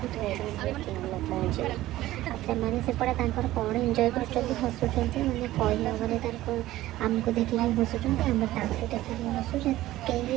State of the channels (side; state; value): left; quieter; 15.6 dB